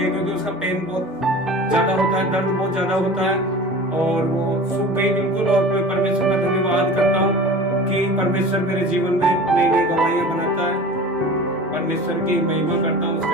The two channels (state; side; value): normal; both; correlation 0.38